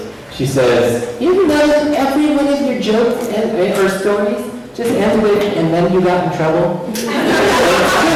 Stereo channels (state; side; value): identical; both; correlation 1.00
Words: she says, "You ever notice every one of your jokes or stories just ends with, and then you got in trouble?" It's true.